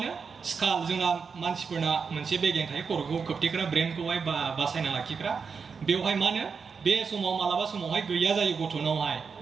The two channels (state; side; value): quieter; left; 5.6 dB